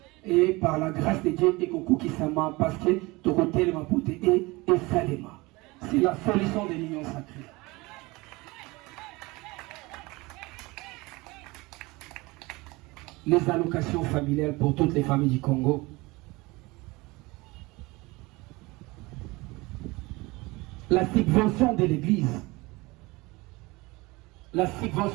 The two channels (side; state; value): left; quieter; 23.0 dB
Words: Et par la grâce de Dieu, et Koko Kisama, parce que ton côté, le Mapoute et Salema. C'est la solution de l'union sacrée. Les allocations familiales pour toutes les familles du Congo. La subvention de l'Église. la